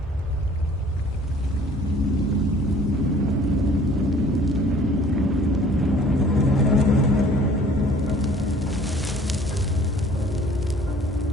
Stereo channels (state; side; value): normal; both; correlation 0.53